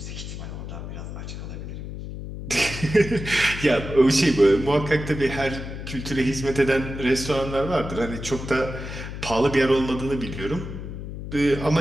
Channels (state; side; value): noise; left; hum, 8 dB below the sound